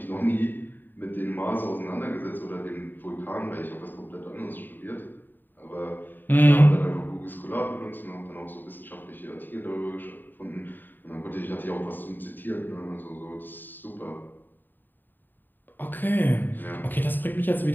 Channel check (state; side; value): late; right; 0.091 ms